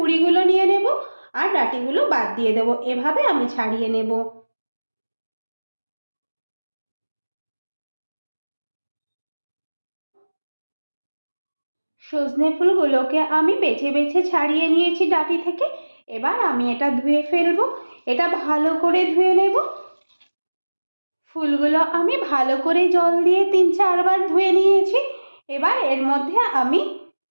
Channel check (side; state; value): both; inverted; correlation -1.00